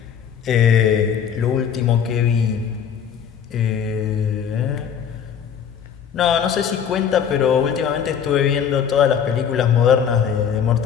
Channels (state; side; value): quieter; right; 7.9 dB